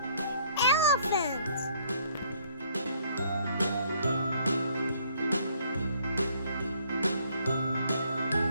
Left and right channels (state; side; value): inverted; both; correlation -0.64